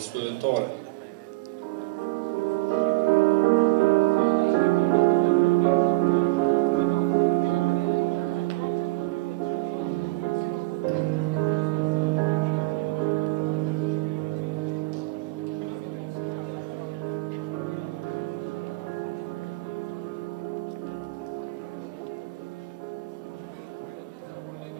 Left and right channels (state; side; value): quieter; left; 22.1 dB